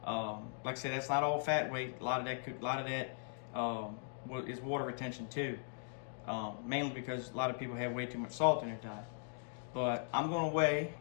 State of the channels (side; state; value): right; silent; digital silence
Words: Like I said, that's not all fat weight. A lot of that is water retention too. Mainly because a lot of people have way too much salt in their diet. But I'm going to weigh.